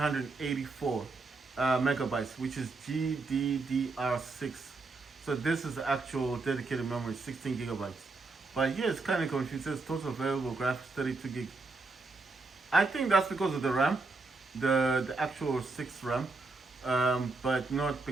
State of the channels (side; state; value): left; quieter; 3.7 dB